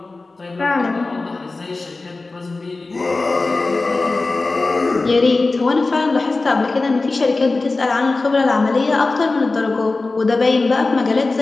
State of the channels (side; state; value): right; quieter; 3.5 dB